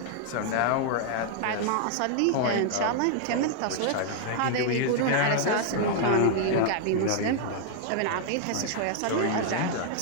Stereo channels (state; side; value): different; both; correlation 0.00